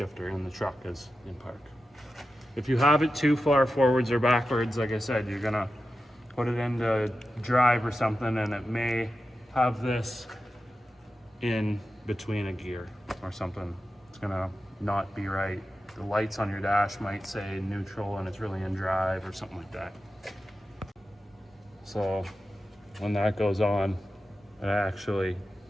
in the truck is in park. If you have it too far forwards or backwards, like I said, you're gonna put it into drive or something and it may have this in between a gear or something. It's gonna not be right. The lights on your dash might say neutral and it's really in drive or something like that. So when that goes on, it actually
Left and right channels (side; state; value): both; normal; correlation 0.92